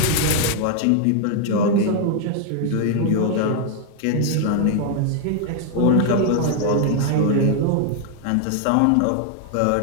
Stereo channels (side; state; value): both; different; correlation 0.00